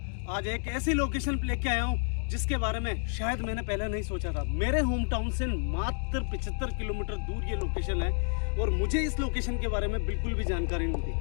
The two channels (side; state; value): right; silent; 58 dB below the other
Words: आज एक ऐसी लोकेशन लेके आया हूं जिसके बारे में शायद मैंने पहले नहीं सोचा था। मेरे होम टाउन से मात्र 75 किलोमीटर दूर ये लोकेशन है और मुझे इस लोकेशन के बारे में बिल्कुल भी जानकारी नहीं